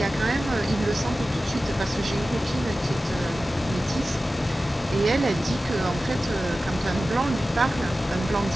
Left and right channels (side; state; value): both; normal; correlation 0.95